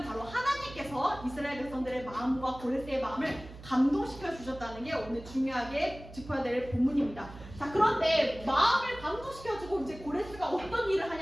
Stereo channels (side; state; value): right; noise; hum, 16 dB below the sound